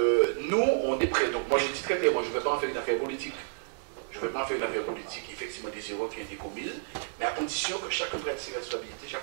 nous, on est prêts. Donc, moi, je dis très clairement, je ne vais pas en faire une affaire politique. Je ne vais pas en faire une affaire politique, effectivement, des erreurs qui ont été commises, mais à condition que chacun prenne ses responsabilités,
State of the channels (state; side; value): silent; left; digital silence